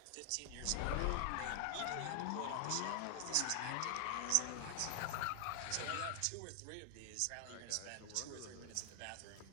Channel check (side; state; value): both; different; correlation 0.00